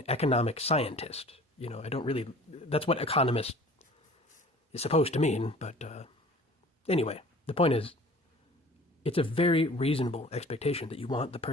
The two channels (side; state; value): both; normal; correlation 0.46